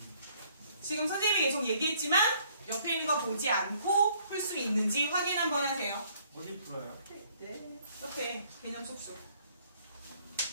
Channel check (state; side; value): inverted; both; correlation -0.63